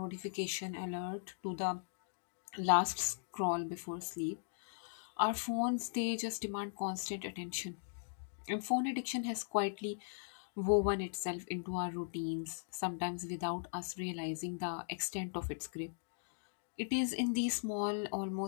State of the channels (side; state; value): right; silent; digital silence